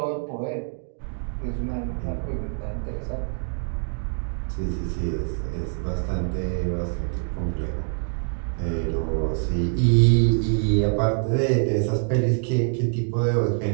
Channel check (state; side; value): silent; left; 61 dB below the other